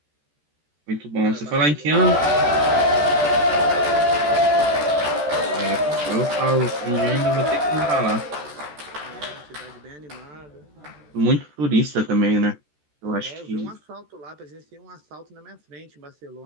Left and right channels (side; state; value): left; late; 13 ms